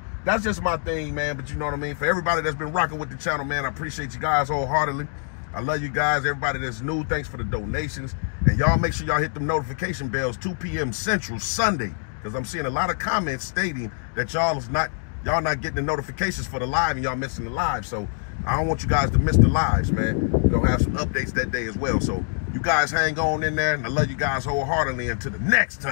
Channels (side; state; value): right; silent; 62 dB below the other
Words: that's just my thing, man. But you know what I mean? For everybody that's been rocking with the channel, man, I appreciate you guys wholeheartedly. I love you guys. Everybody that's new, thanks for the donations. And y'all make sure y'all hit them notification bells 2 p.m. Central Sunday, because I'm seeing a lot of comments stating that y'all not getting the notifications for the live and y'all missing the live. So I don't want you guys to miss the lives, man. We're gonna have some updates that day as well. So you guys hang on in there, and I love you guys wholeheartedly. Until the next